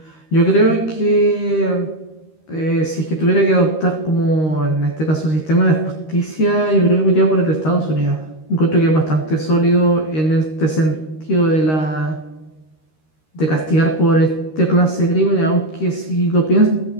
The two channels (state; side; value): late; right; 13 ms